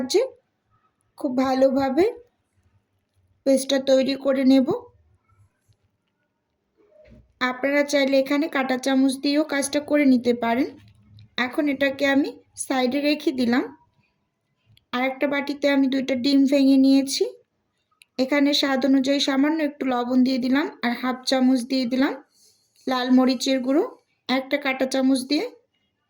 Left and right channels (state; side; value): identical; both; correlation 1.00